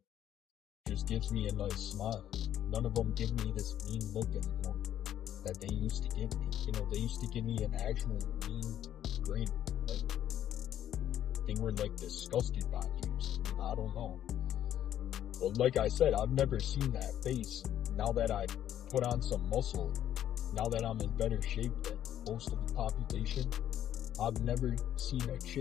just gives me a nice smile. None of them give me this mean look anymore that they used to give me. They used to give me an actual mean grin. Like, they were like disgusted by you. I don't know. But like I said, I've never seen that face. Now that I put on some muscle, now that I'm in better shape than most of the population, I've never seen a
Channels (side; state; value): right; quieter; 11.0 dB